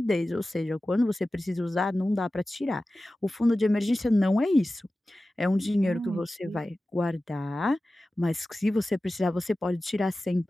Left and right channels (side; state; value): both; normal; correlation 0.95